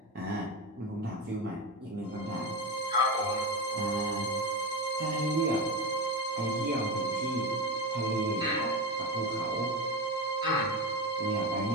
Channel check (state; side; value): normal; both; correlation 0.20